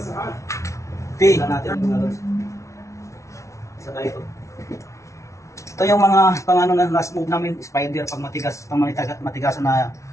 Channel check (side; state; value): right; late; 0.14 ms